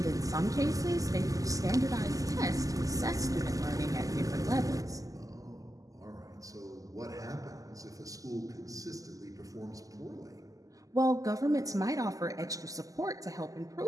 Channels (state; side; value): late; left; 0.17 ms